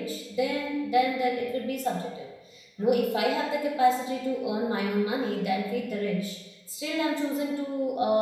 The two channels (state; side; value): identical; both; correlation 1.00